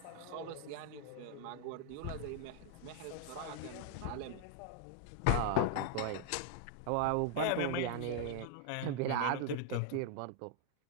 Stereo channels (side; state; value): both; different; correlation 0.00